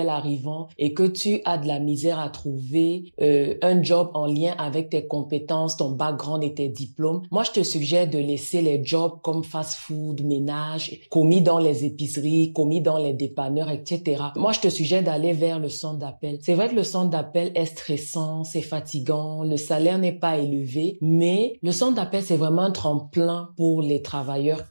arrivant et que tu as de la misère à trouver un job en lien avec tes compétences, ton background et tes diplômes, moi, je te suggère de laisser les jobs comme fast-food, ménage, commis dans les épiceries, commis dans les dépanneurs, etc. Moi, je te suggère d'aller vers le centre d'appel. C'est vrai que le centre d'appel est stressant, c'est fatigant, le salaire n'est pas élevé, mais le centre d'appel, c'est vraiment un tremplin pour les travailleurs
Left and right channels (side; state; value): both; inverted; correlation -1.00